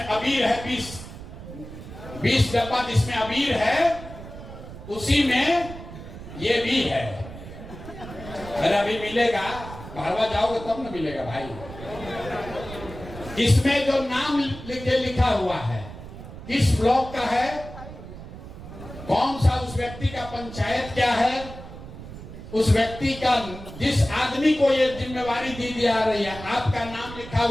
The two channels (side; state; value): right; noise; rumble, 13 dB below the sound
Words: अबीर है, 20 डब्बा जिसमें अबीर है, उसी में ये भी है। अरे अभी मिलेगा, भारवा जाओगे तब ना मिलेगा भाई। इसमें जो नाम लिखा हुआ है, किस ब्लॉक का है, कौन सा उस व्यक्ति का पंचायत क्या है, उस व्यक्ति का, जिस आदमी को ये जिम्मेवारी दी जा रही है, आपका नाम लिखा